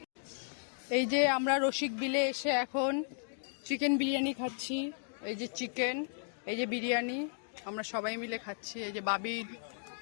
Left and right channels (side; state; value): right; silent; digital silence